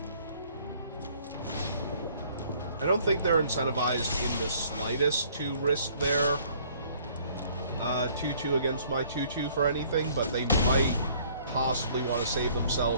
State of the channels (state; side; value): inverted; both; correlation -0.59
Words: I don't think they're incentivized in the slightest to risk their 2-2 against my 2-2 for anything, but they might possibly want to save